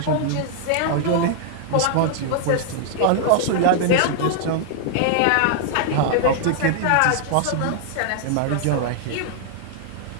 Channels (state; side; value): different; both; correlation -0.01